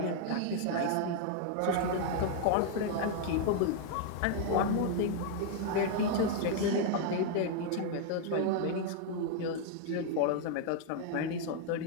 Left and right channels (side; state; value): both; different; correlation 0.00